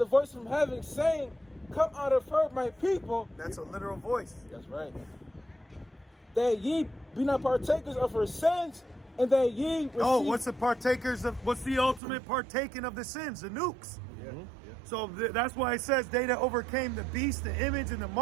voice from heaven saying, come out of her, my people. That's a literal voice. That's right. That ye be not partakers of her sins, and that ye receive... Oh, what's the ultimate partaking of the sins? The nukes. Yeah. So that's why it says they that overcame the beast, the image, and the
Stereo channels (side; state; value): left; drops out; at 12.0 s